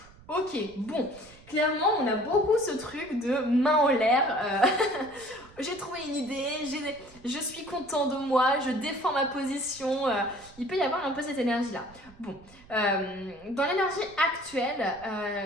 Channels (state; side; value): noise; right; rumble, 24 dB below the sound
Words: Ok, bon, clairement, on a beaucoup ce truc de main en l'air. J'ai trouvé une idée, je suis content de moi, je défends ma position. Il peut y avoir un peu cette énergie-là. Bon, dans l'énergie actuelle,